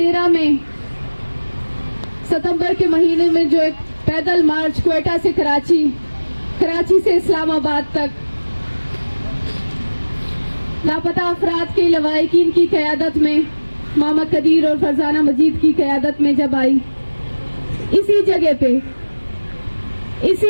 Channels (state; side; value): inverted; both; correlation -1.00